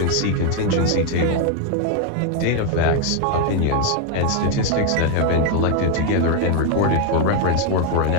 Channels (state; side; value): different; both; correlation 0.01